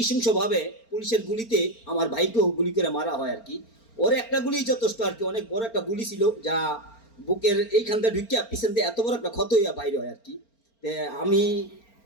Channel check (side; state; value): right; late; 4.4 ms